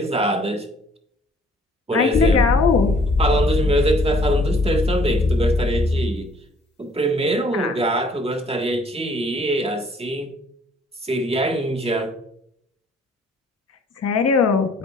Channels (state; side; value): normal; both; correlation 0.59